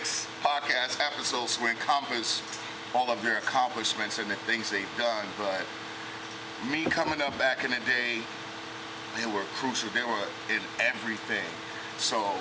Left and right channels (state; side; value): identical; both; correlation 1.00